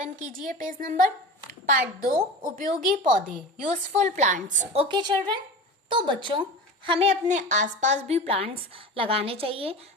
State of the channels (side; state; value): both; normal; correlation 0.32